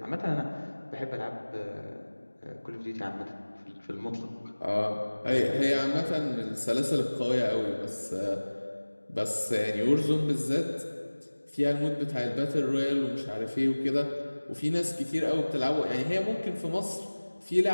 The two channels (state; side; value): inverted; both; correlation -1.00